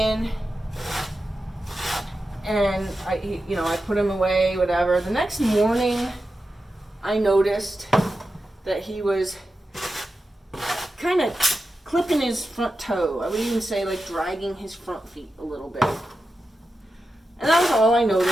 And I put him away, whatever. The next morning, I noticed that he was kind of clipping his front toe. I would even say like dragging his front feet a little bit. And that was all I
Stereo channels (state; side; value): normal; both; correlation 0.91